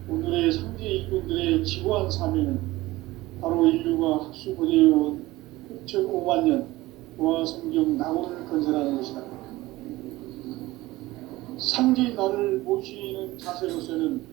오늘의 상제 일꾼들의 지구한 사명은 바로 인류가 학수고대해온 6,5만 년 보아 성경 낙원을 건설하는 것이다. 상제의 나를 모시는 자세로서는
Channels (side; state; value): left; quieter; 18.7 dB